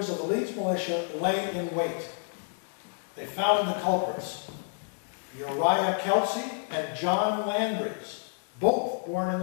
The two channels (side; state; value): right; silent; 58 dB below the other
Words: of the Leeds militia lay in wait. They found the culprits, Uriah Kelsey and John Landry's, both born in